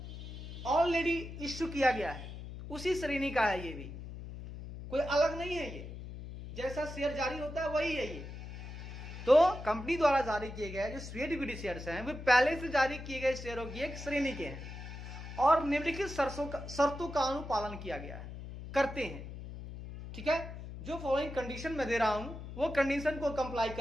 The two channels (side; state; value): left; noise; hum, 10 dB below the sound